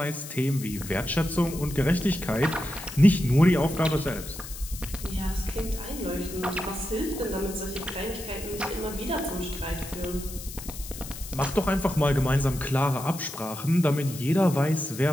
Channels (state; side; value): noise; left; hiss, 12 dB below the sound